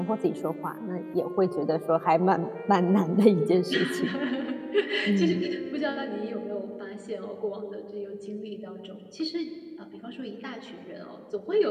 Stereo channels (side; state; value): both; identical; correlation 1.00